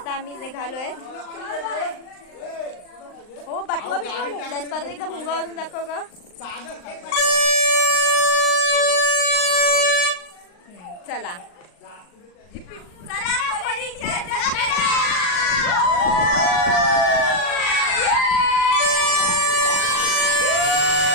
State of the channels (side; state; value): right; late; 39 ms